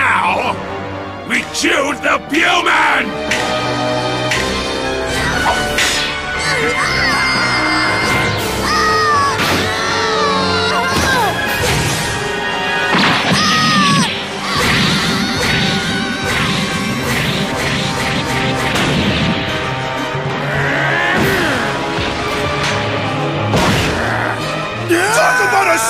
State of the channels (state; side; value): identical; both; correlation 1.00